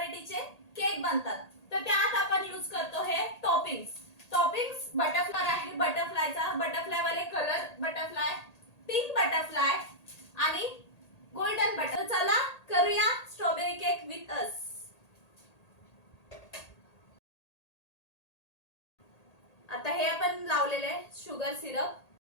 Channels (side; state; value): right; late; 1.8 ms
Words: केक बनतात, तर त्यात आपण यूज करतो हे टॉपिंग्स। टॉपिंग्स बटरफ्लाय आहे, बटरफ्लायचा बटरफ्लाय वाले कलर बटरफ्लाय, पिंक बटरफ्लाय आणि गोल्डन बटर। चला करूया स्ट्रॉबेरी केक विथ अस। आता हे आपण लावलेले आहे शुगर सिरप।